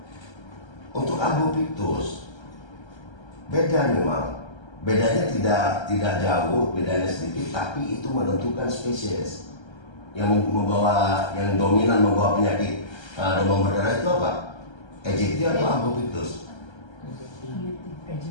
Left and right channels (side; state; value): right; late; 1.3 ms